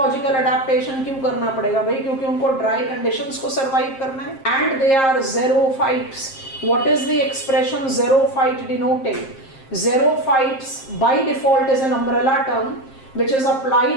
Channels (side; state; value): right; late; 7.5 ms